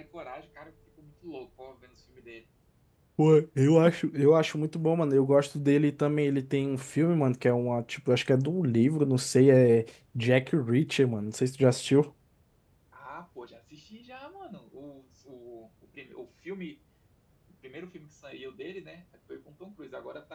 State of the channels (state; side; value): identical; both; correlation 1.00